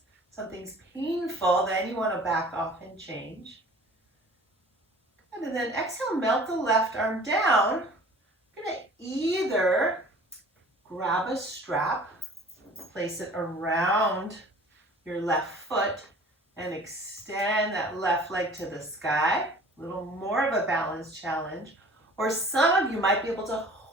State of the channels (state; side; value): normal; both; correlation 0.47